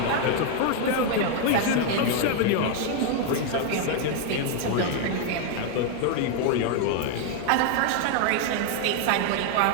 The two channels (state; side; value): different; both; correlation 0.00